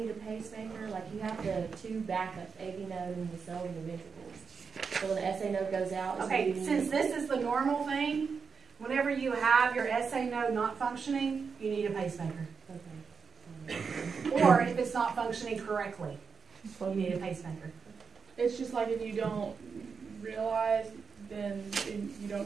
a pacemaker? Like, you have the two backups, AV node and the cells and the ventricles. So when the SA node goes out... Okay, since this is the normal thing, whenever you have your SA node not functioning, you need a pacemaker. Okay. Or if it's not functioning correctly, you need a pacemaker. It's just like if you don't realize, then you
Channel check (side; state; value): left; quieter; 5.7 dB